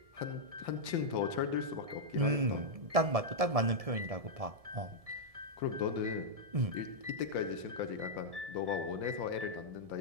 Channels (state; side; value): late; left; 1.7 ms